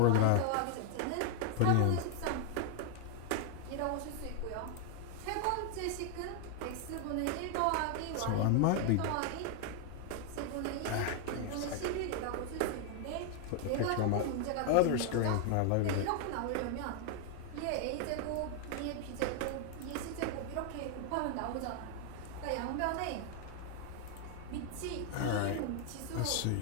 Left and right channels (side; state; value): both; different; correlation 0.00